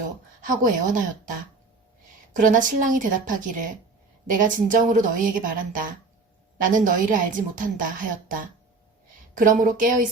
하고 애원하였다. 그러나 신랑이 대답하기를 내가 진정으로 너희에게 말한다. 나는 너희를 알지 못한다 하였다. 그러므로 깨어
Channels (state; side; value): quieter; left; 3.8 dB